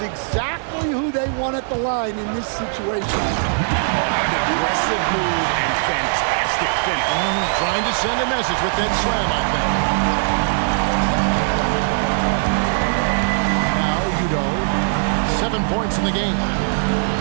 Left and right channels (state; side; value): silent; left; 60 dB below the other